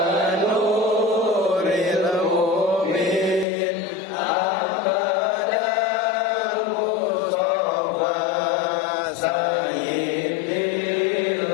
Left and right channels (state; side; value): drops out; right; at 3.5 s